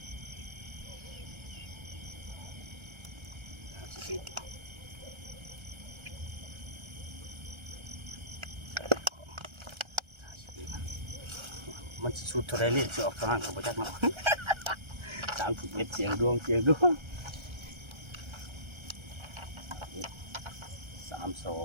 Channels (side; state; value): left; late; 1.3 ms